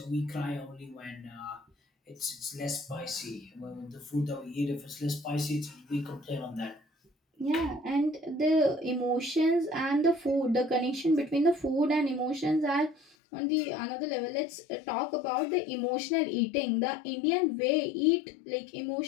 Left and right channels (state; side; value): drops out; right; at 13.0 s